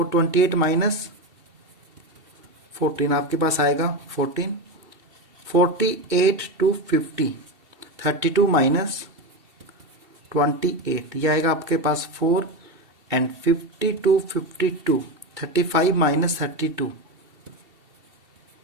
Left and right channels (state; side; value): late; left; 2.7 ms